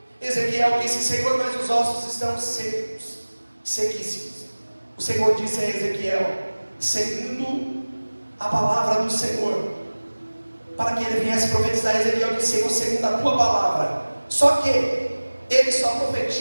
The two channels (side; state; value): both; inverted; correlation -1.00